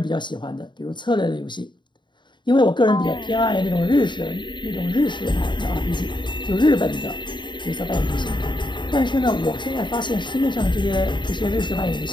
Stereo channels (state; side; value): late; right; 0.22 ms